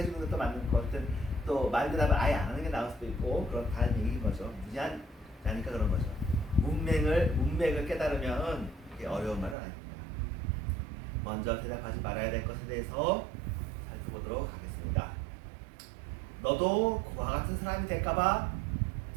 것도 맞는 것 같은 또 말 대답을 아예 안 하는 게 나을 수도 있고 그런 다른 얘기인 거죠. 무지한 자니까 그런 거죠. 문맥을 깨달으면 그게 어려운 말은 아닙니다. 먼저 대답하지 말아야 될 것에 대해서 살펴보도록 하겠습니다. 너도 그와 같은 사람이 될까봐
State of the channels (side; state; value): left; drops out; at 9.6 s